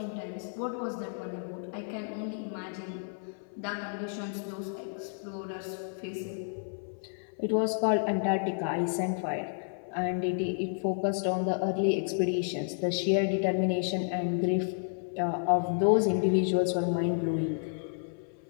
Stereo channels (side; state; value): right; silent; 57 dB below the other